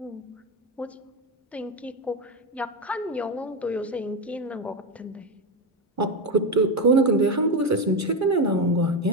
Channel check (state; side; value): normal; both; correlation 0.12